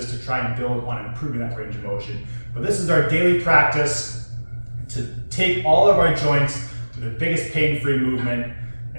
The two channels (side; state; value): both; inverted; correlation -1.00